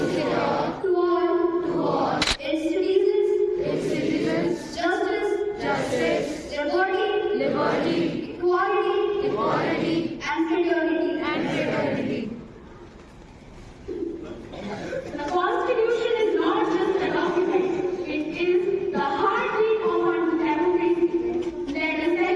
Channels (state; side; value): identical; both; correlation 1.00